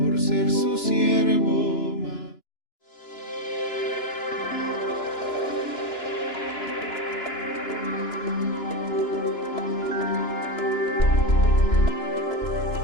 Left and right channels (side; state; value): right; late; 2.9 ms